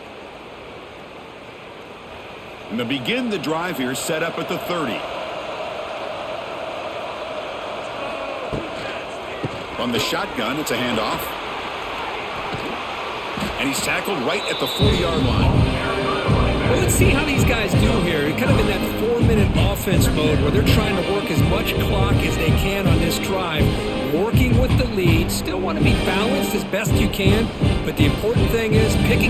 And to begin the drive here, set up at the 30. From the shotgun, it's a handoff. And he's tackled right at the 40-yard line. Well, let's see how these guys do here. Kind of in that 4-minute offense mode where they're trying to work as much clock as they can on this drive, working with the lead. Still want to be balanced as best you can, but the important thing is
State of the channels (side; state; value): both; identical; correlation 1.00